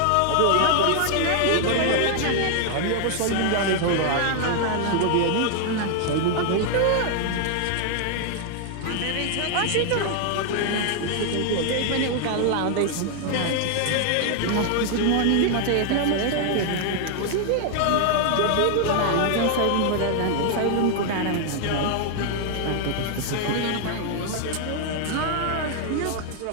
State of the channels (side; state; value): both; different; correlation 0.00